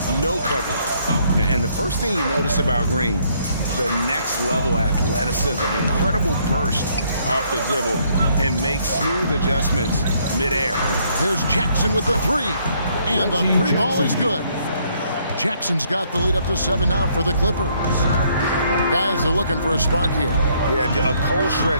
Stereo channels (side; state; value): both; inverted; correlation -0.68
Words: no coverage. And the first thing you notice about Green, the next level athleticism, incredible burst off the dribble, and makes smooth adjustments midair. There's Jackson with the 3, and the 3-ball is good. Jackson's got the lead up to 7 now for the Clippers. Guys are looking for a spark here. Yeah, a cold